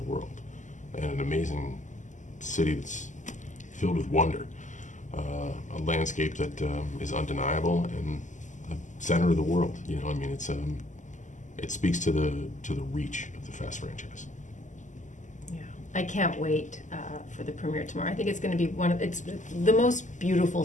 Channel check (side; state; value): right; late; 0.36 ms